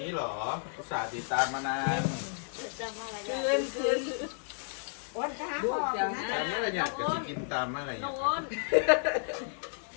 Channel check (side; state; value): right; silent; digital silence